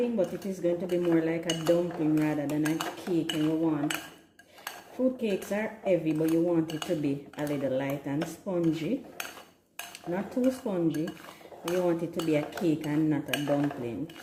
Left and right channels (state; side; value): identical; both; correlation 1.00